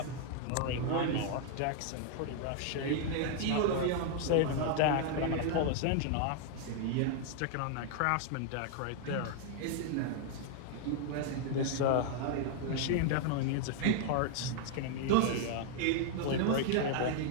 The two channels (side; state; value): both; different; correlation 0.00